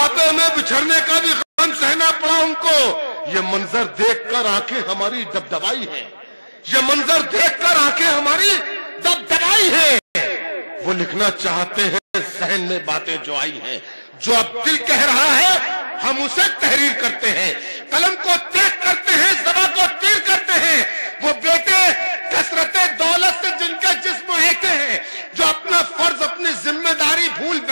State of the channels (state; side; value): inverted; both; correlation -1.00